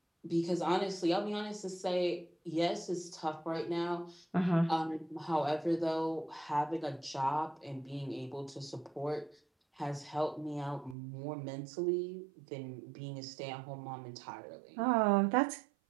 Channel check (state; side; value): drops out; left; at 11.0 s